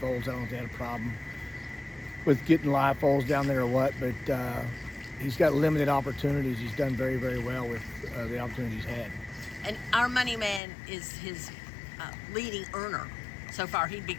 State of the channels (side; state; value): right; drops out; at 10.6 s